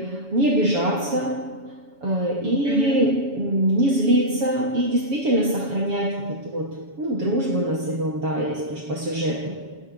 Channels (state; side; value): late; left; 7.2 ms